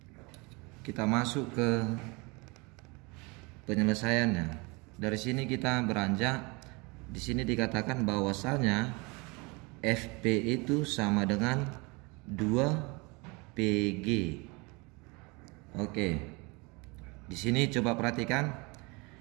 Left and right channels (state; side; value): quieter; left; 27.6 dB